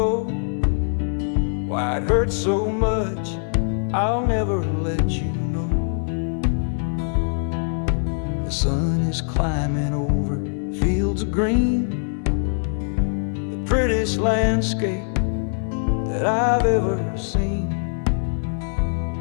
Why it hurts so much, I'll never let you know. The sun is climbing over fields of green, prettiest landscape that I've ever seen.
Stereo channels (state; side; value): silent; right; digital silence